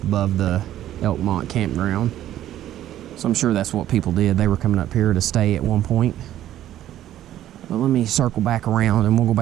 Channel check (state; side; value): quieter; left; 12.5 dB